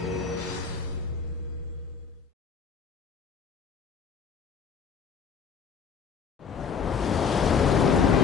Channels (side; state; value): right; quieter; 6.2 dB